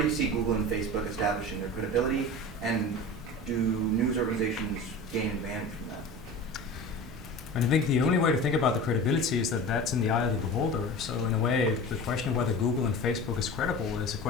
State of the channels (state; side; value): normal; both; correlation 0.33